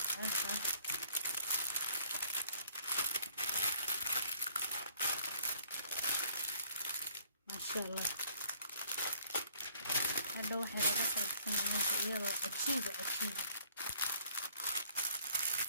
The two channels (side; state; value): both; inverted; correlation -0.60